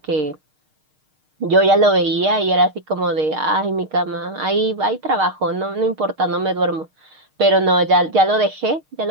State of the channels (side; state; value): left; late; 6.5 ms